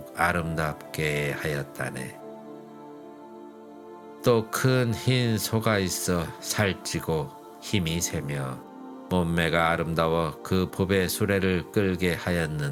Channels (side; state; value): both; identical; correlation 1.00